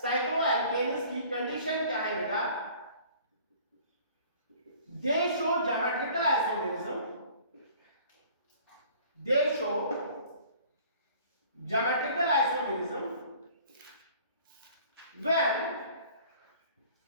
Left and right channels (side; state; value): both; inverted; correlation -0.50